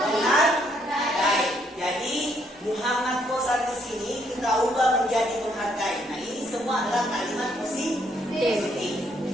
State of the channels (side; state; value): both; normal; correlation 0.71